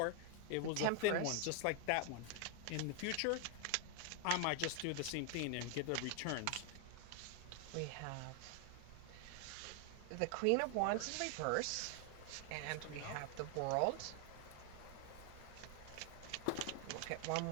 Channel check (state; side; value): different; both; correlation 0.00